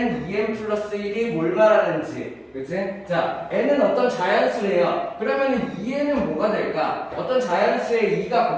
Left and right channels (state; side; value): identical; both; correlation 1.00